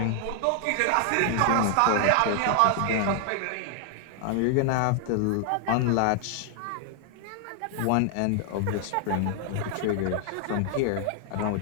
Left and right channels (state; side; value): different; both; correlation 0.00